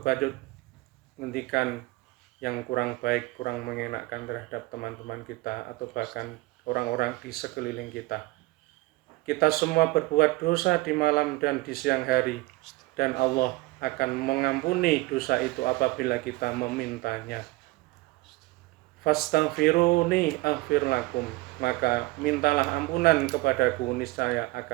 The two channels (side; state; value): left; quieter; 21.4 dB